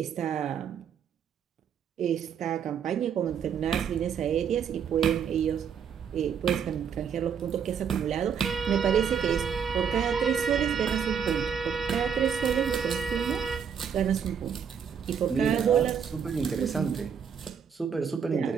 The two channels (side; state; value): left; quieter; 7.3 dB